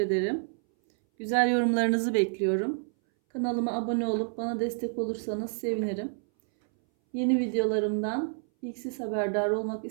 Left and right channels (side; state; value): left; silent; 59 dB below the other